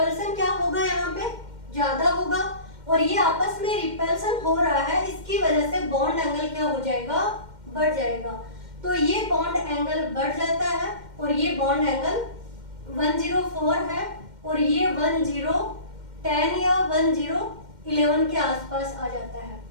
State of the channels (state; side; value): late; left; 2.1 ms